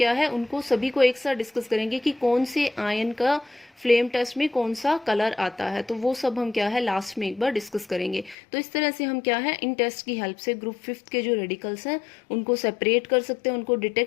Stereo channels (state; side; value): drops out; right; at 8.3 s